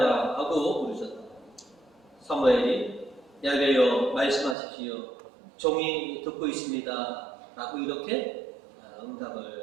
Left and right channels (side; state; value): left; drops out; at 4.5 s